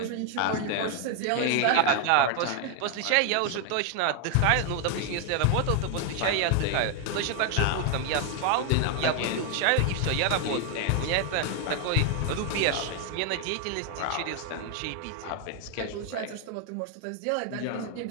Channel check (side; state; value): both; different; correlation 0.00